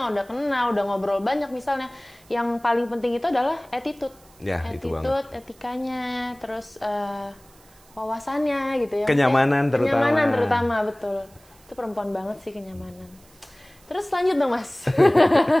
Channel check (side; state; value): right; noise; hiss, 28 dB below the sound